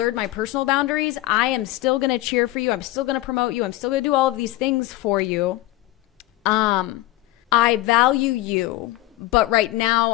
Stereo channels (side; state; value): right; quieter; 16.7 dB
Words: my personal boundaries. I am still going to cheer for you. I'm still going to promote you. I'm still going to do all of these things for you. I value you, but right